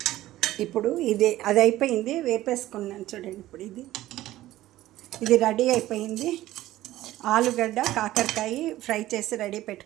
ఇప్పుడు అది అయిపోయింది, వేపేసుకున్నాను చూడండి. ఇప్పుడు ఇది రెడీ అయిపోయింది. ఆలుగడ్డ కాకరకాయ ఫ్రై చేసి రెడీ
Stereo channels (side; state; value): left; quieter; 15.2 dB